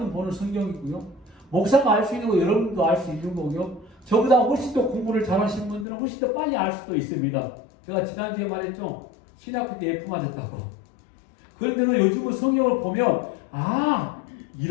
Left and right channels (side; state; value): right; drops out; at 5.9 s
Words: 보는 성경이고요. 목사가 알 수 있는 거 여러분도 알 수 있는 거고요. 저보다 훨씬 더 공부를 잘하시는 분들은 훨씬 더 빨리 알 수도 있습니다. 제가 지난주에 말했죠. 신학교 때 F 맞았다고. 그런데 요즘은 성경을 보면